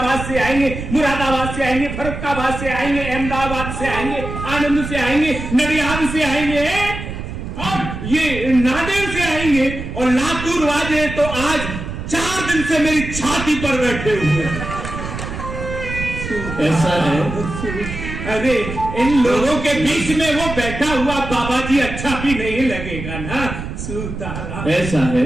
से आएंगे, मुरादाबाद से आएंगे, फरुखाबाद से आएंगे, अहमदाबाद से आएंगे, आनंद से आएंगे, नडियाद से आएंगे, और ये नादेड़ से आएंगे, और लातूर वाले तो आज 4 दिन से मेरी छाती पर बैठे हुए हैं। ऐसा है। अरे इन लोगों के बीच में वो बैठा हुआ बाबा जी अच्छा भी नहीं लगेगा ना? सीताराम। ऐसा है,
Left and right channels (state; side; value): noise; right; rumble, 7 dB below the sound